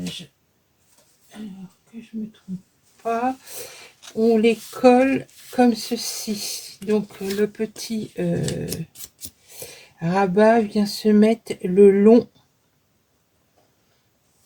alors que je me trompe pas, on les colle comme ceci. Donc le petit rabat vient se mettre le long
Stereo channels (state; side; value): identical; both; correlation 1.00